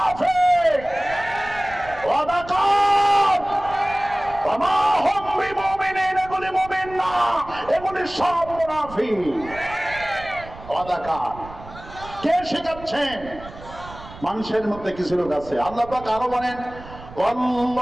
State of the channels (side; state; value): right; noise; rumble, 17 dB below the sound